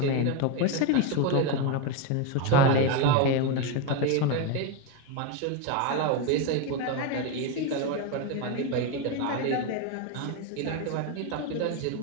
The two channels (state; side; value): different; both; correlation 0.03